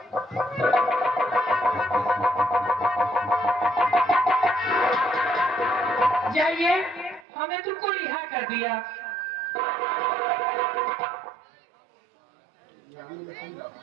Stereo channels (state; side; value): drops out; left; at 7.2 s